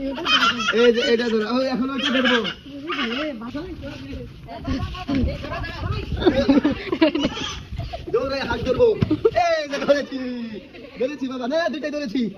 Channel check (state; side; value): identical; both; correlation 1.00